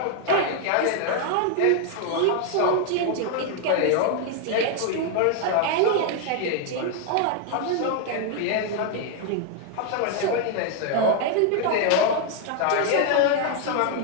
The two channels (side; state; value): both; different; correlation 0.00